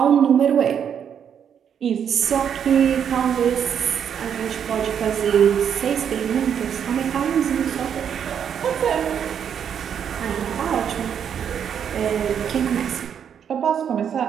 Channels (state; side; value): quieter; left; 8.2 dB